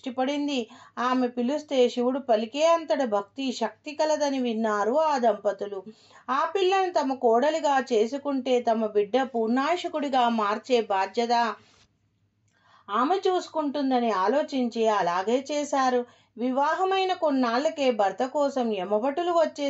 పడింది. ఆమె పిలిస్తే శివుడు పలికే అంతటి భక్తి శక్తి కలదని విన్నారు ఆ దంపతులు. ఆ పిల్లను తమ కోడలిగా చేసుకుంటే తమ బిడ్డ పూర్ణాయుషకుడిగా మార్చే బాధ్యత ఆమె చూసుకుంటుందని ఆలోచించి అలాగే చేశారు. వివాహమైన కొన్నాళ్లకే భర్త కోసం యమభటులు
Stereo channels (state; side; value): identical; both; correlation 1.00